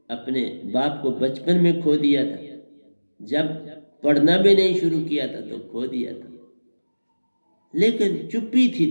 अपने बाप को बचपन में खो दिया था, जब पढ़ना भी नहीं शुरू किया था तो खो दिया था। लेकिन चुप्पी थी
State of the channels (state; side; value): inverted; both; correlation -1.00